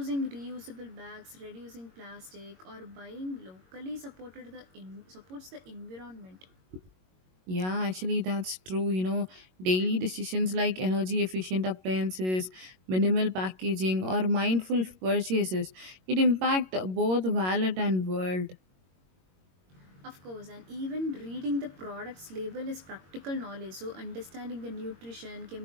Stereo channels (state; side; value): late; left; 22 ms